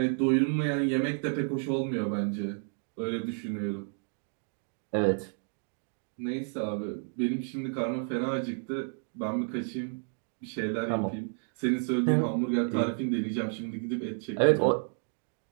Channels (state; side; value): silent; left; 57 dB below the other